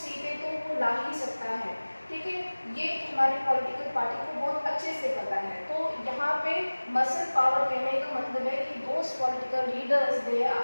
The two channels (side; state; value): both; inverted; correlation -1.00